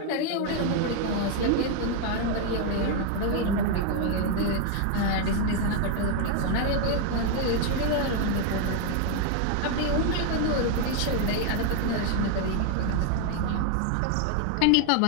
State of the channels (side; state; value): both; different; correlation 0.01